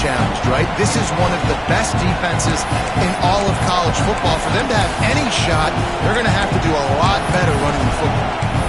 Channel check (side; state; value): both; identical; correlation 1.00